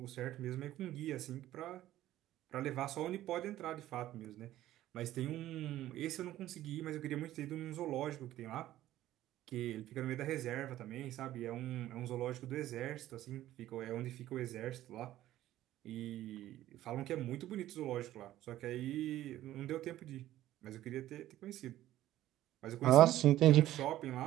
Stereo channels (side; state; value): left; quieter; 14.1 dB